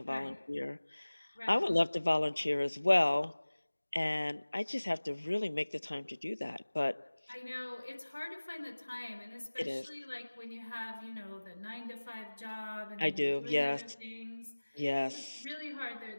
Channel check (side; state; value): both; inverted; correlation -1.00